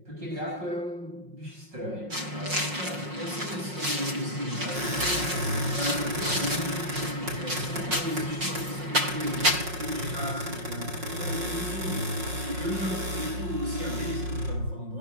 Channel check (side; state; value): left; late; 5.5 ms